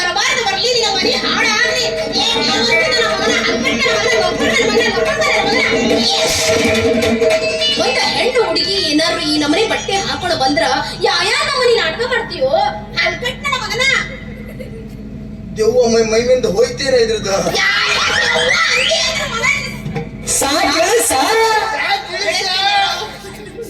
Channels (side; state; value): both; identical; correlation 1.00